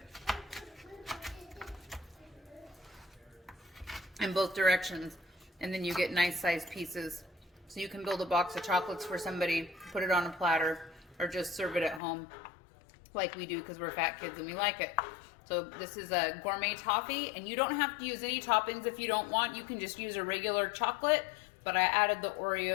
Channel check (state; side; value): drops out; right; at 12.0 s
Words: in both directions, and then you get nice sized pieces. So you can build a box of chocolates for somebody, put it on a platter, or just serve it at home like we do because we're fat kids and we like it. So this is a gourmet toffee, and you don't have to use any toppings if you don't want. You can just use a regular chocolate, but I added the